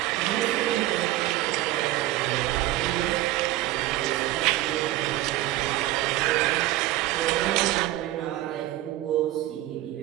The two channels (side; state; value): left; quieter; 15.7 dB